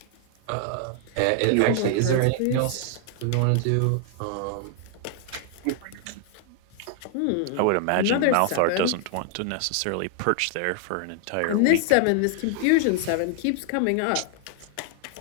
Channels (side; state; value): both; different; correlation 0.00